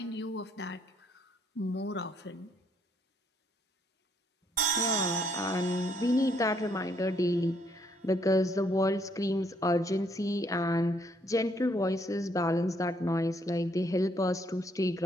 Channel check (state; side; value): normal; both; correlation 0.70